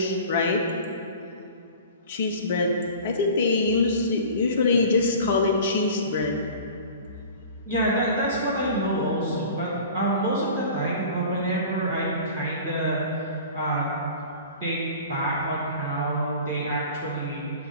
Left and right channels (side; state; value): both; inverted; correlation -0.41